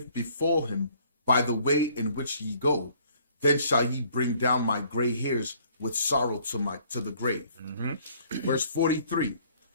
befall him by the way in which ye go, then shall ye bring down my gray hairs with sorrow to the grave. Verse 43.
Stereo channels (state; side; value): inverted; both; correlation -0.60